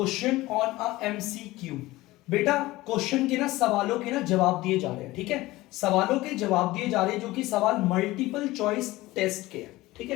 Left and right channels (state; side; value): quieter; right; 18.7 dB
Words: on a MCQ, बेटा क्वेश्चन के ना सवालों के ना जवाब दिए जा रहे हैं। ठीक है, सवालों के जवाब दिए जा रहे हैं जो कि सवाल मल्टीपल चॉइस टेस्ट के हैं। ठीक